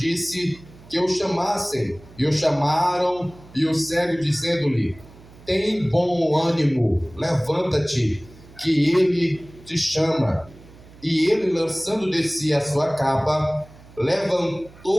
que o chamassem. E o chamaram, e o cego dizendo-lhe: tem bom ânimo, levanta-te, que ele te chama. E ele, lançando de si a sua capa,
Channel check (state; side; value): noise; right; hum, 22 dB below the sound